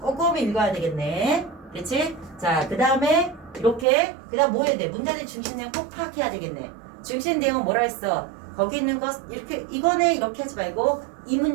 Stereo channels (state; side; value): drops out; left; at 3.9 s